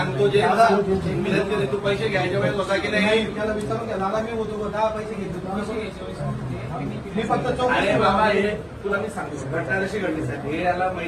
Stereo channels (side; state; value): both; identical; correlation 1.00